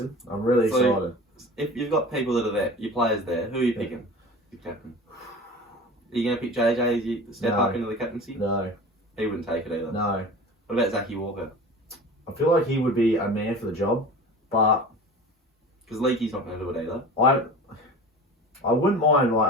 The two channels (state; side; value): normal; both; correlation 0.37